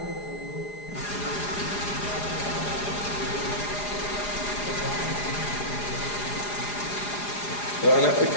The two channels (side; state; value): right; late; 4.9 ms